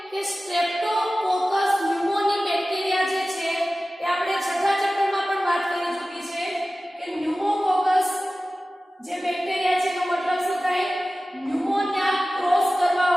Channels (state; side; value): normal; both; correlation 0.96